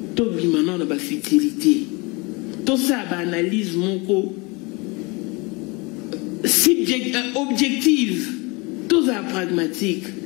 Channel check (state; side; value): quieter; right; 27.3 dB